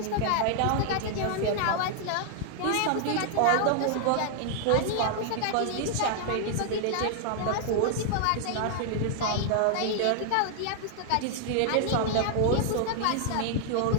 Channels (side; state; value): both; different; correlation 0.00